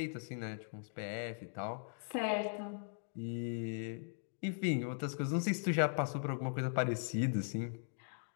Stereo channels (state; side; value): silent; right; digital silence